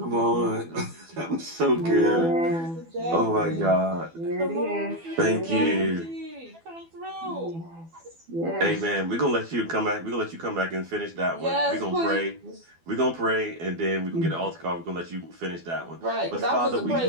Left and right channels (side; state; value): left; late; 12 ms